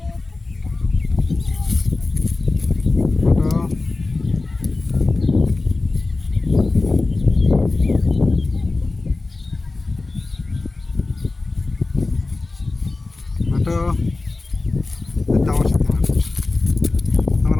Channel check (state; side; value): quieter; right; 3.4 dB